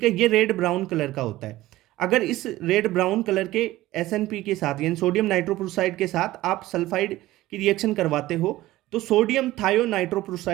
है। ये रेड ब्राउन कलर का होता है। अगर इस रेड ब्राउन कलर के SNP के साथ यानी सोडियम नाइट्रोप्रोसाइड के साथ आप सल्फाइड की रिएक्शन करवाते हो तो सोडियम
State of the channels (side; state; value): left; quieter; 16.7 dB